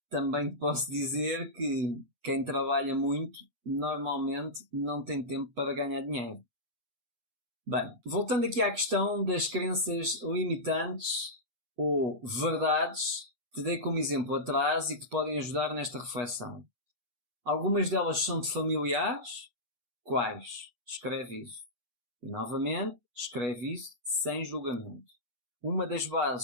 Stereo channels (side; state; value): left; late; 8.4 ms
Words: também te posso dizer que quem trabalha muito, normalmente não tem tempo para ganhar dinheiro. Bem, voltando aqui à questão das crenças limitantes ou verdades, te dei como exemplo atrás e que te podem ajudar nesta reflexão. Algumas delas são-te familiares? Quais? Escreve isso. E novamente, escreve isso sem julgamento. Uma das